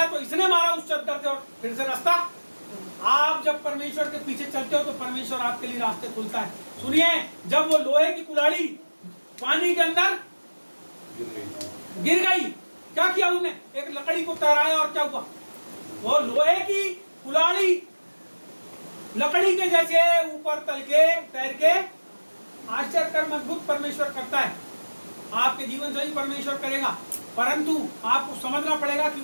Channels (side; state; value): both; inverted; correlation -1.00